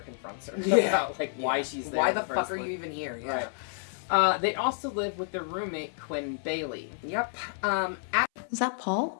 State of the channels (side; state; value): right; silent; 58 dB below the other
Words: confronts her about why she's there. Why the fuck are you even here? Yeah. Right. They also live with their roommate Quinn Bailey. Yep. Is that